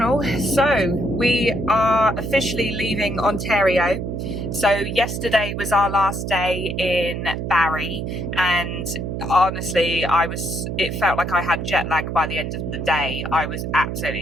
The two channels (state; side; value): noise; right; hum, 4 dB below the sound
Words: So we are officially leaving Ontario. So yesterday was our last day in Barrie, and honestly it felt like I had jet lag by the end of the day. I was